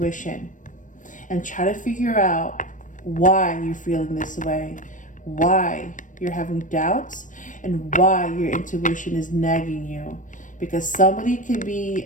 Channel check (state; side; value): late; right; 0.37 ms